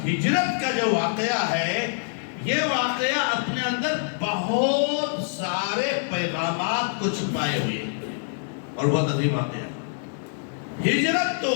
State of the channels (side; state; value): right; silent; digital silence